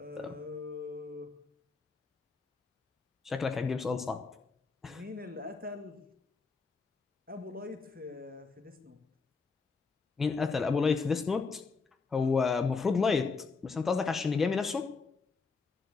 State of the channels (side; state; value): right; quieter; 4.6 dB